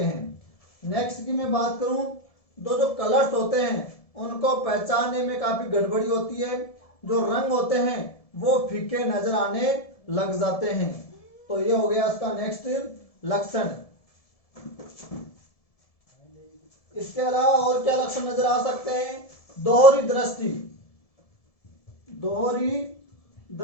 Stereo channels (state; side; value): late; right; 1.7 ms